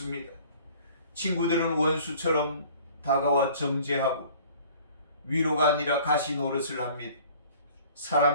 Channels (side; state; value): both; inverted; correlation -0.50